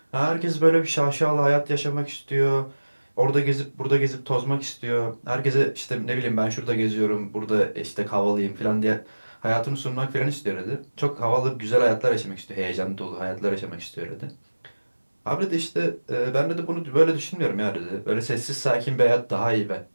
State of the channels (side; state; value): both; inverted; correlation -1.00